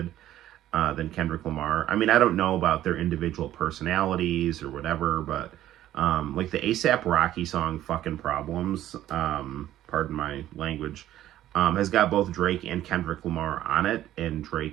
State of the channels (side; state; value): left; quieter; 13.2 dB